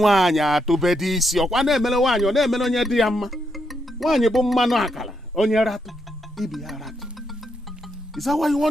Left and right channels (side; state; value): both; normal; correlation 0.80